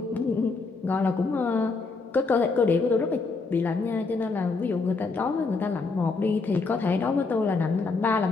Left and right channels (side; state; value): right; quieter; 4.1 dB